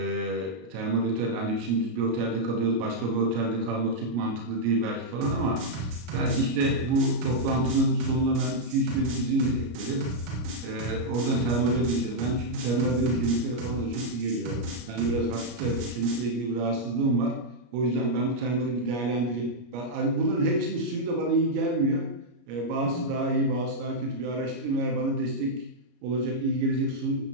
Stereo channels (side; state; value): left; late; 33 ms